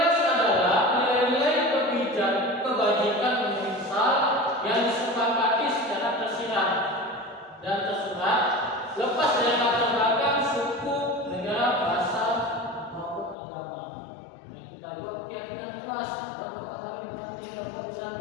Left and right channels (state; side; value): drops out; right; at 13.4 s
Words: adalah nilai-nilai kebajikan universal yang disepakati secara tersirat dan tersurat, lepas dari latar belakang suku, negara, bahasa maupun agama. Yang kita buat keyakinan kelas, Bapak kami berarti Bapak bisa